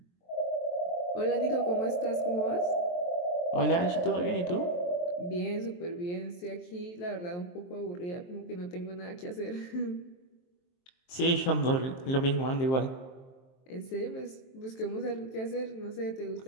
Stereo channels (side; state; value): right; late; 23 ms